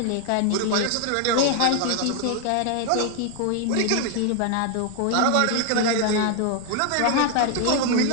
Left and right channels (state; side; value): different; both; correlation 0.00